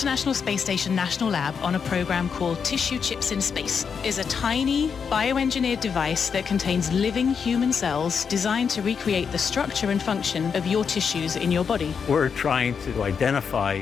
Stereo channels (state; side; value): quieter; right; 6.4 dB